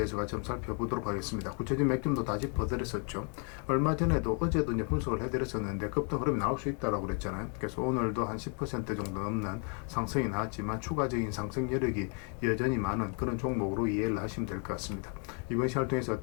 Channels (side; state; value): right; quieter; 39.9 dB